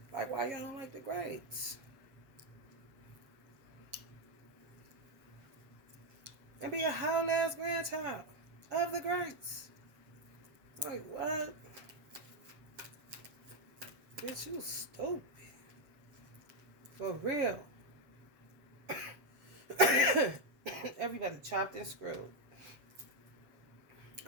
Like, why y'all don't like the greats? And be a whole ass grandchild of the greats. Like, what? Bitch, you stupid. For real. Everybody chopped and screwed.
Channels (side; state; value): left; late; 7.5 ms